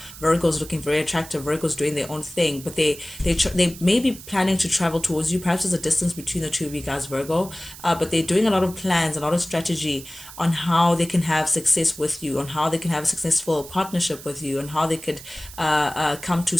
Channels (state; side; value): noise; right; hiss, 16 dB below the sound